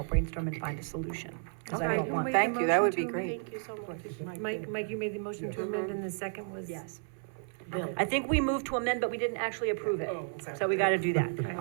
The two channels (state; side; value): silent; left; 56 dB below the other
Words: brainstorm and find a solution. 'Cause I don't want. Thank you, that would be great. Thank you so much. Mike, you made the motion to amend, and the second was? Yes. Bill. I think we moved to amend, but we didn't actually approve it. Oh, okay. So we got to do that. All